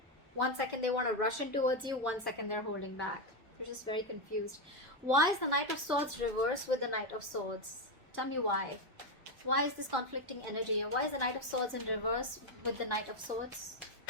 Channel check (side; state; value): both; normal; correlation 0.07